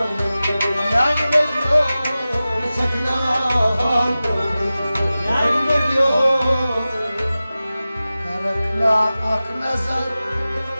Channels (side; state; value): both; inverted; correlation -0.95